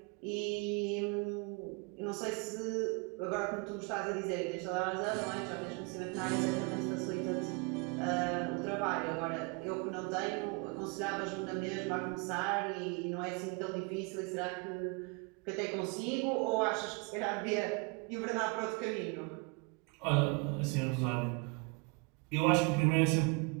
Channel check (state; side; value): quieter; left; 31.3 dB